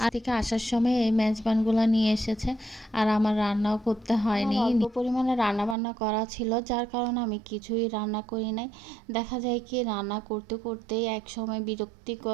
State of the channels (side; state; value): left; drops out; at 5.8 s